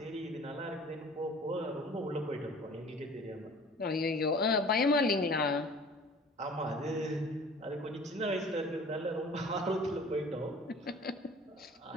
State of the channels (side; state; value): both; normal; correlation 0.46